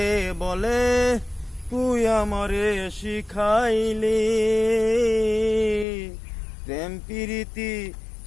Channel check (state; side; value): drops out; right; at 5.9 s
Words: বলে, তুই আমারে শিখাইলি। প্রেম প্রীতি